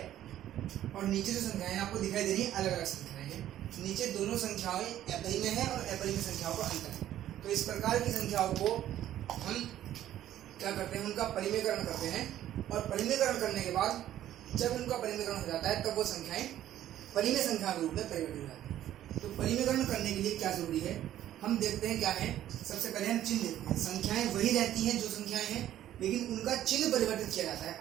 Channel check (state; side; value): quieter; left; 12.3 dB